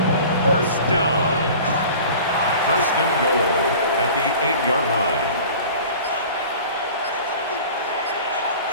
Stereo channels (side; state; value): both; inverted; correlation -0.42